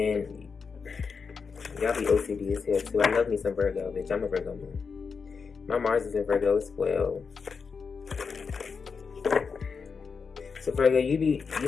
y'all be OCD as hell too. I love me some Virgo, bitch. I'm a Virgo moon. My Mars is in Virgo as well. So Virgo, you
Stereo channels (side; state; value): right; quieter; 5.4 dB